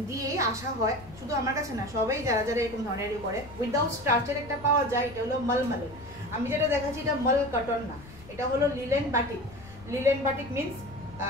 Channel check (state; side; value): noise; left; rumble, 19 dB below the sound